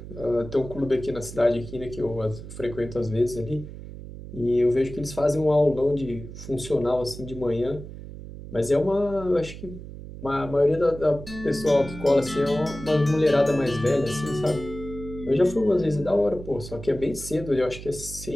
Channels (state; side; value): noise; right; hum, 12 dB below the sound